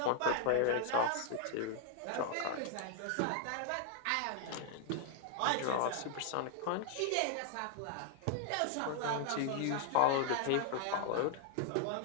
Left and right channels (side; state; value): both; different; correlation 0.00